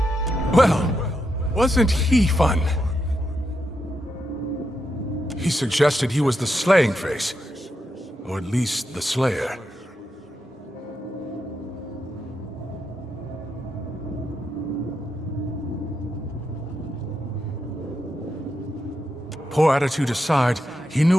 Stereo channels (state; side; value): normal; both; correlation 0.84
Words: Well, wasn't he fun? He suggested he was the slaying face. Or at least the slayer. Poor attitude aside, he